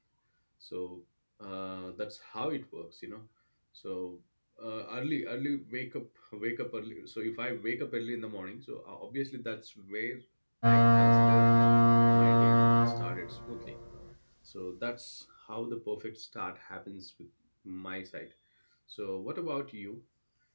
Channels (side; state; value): both; inverted; correlation -1.00